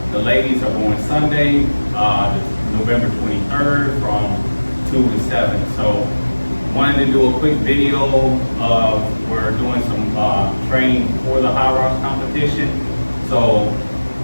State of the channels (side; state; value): both; inverted; correlation -1.00